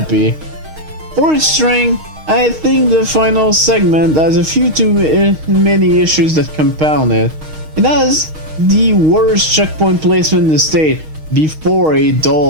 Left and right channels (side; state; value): left; late; 6.4 ms